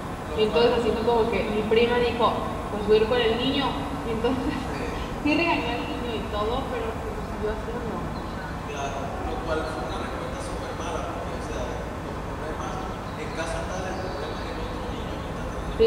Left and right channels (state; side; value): identical; both; correlation 1.00